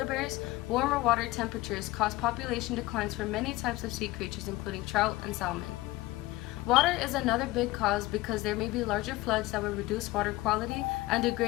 bears. Warmer water temperatures cause population declines for many types of sea creatures including trout and salmon. Water is another big cause because there may be larger floods that will reduce water quality and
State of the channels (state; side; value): quieter; right; 19.2 dB